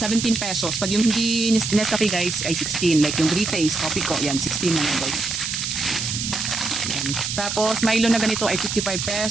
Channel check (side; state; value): right; noise; hiss, 3 dB below the sound